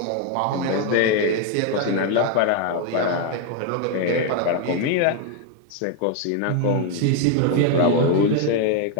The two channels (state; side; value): different; both; correlation 0.01